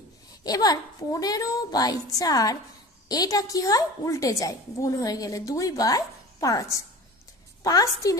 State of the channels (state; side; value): normal; both; correlation 0.38